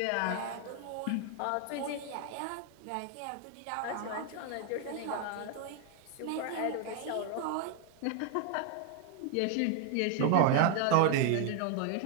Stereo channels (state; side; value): different; both; correlation 0.01